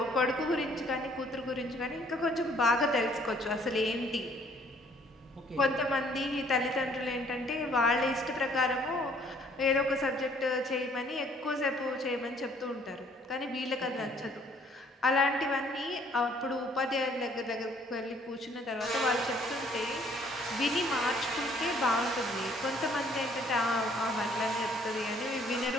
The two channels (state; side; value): normal; both; correlation 0.61